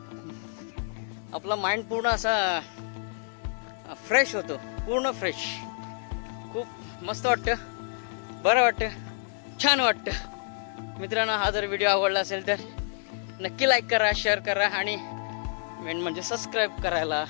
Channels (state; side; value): silent; right; digital silence